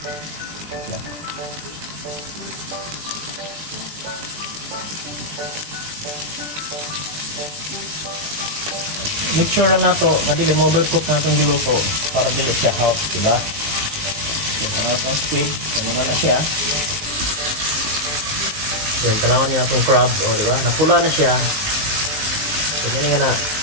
Make sure lang nato na dili mo-overcook natin yung luto para dili siya hot, diba? So, itong squid, naman na siya. Then, tanawan niya itong crab, o diba? Napula na siya. So, hindi nga na,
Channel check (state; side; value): late; left; 19 ms